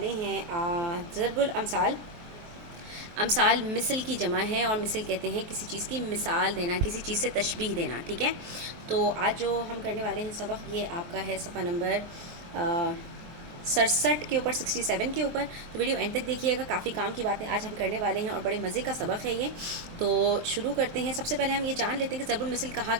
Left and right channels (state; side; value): late; left; 23 ms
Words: ہیں ضرب الامثال۔ امثال مثل کی جمع ہے، اور مثل کہتے ہیں کسی چیز کی مثال دینا، کسی چیز سے تشبیہ دینا، ٹھیک ہے۔ تو آج جو ہم کرنے والے ہیں سبق، یہ آپ کا ہے صفحہ نمبر 67 کے اوپر، 67 کے اوپر۔ تو ویڈیو اینڈ تک دیکھیے گا، کافی کام کی باتیں آج ہم کرنے والے ہیں اور بڑے مزے کا سبق ہے یہ۔ تو شروع کرتے ہیں۔ سب سے پہلے ہم یہ جان لیتے ہیں کہ ضرب المثل کہا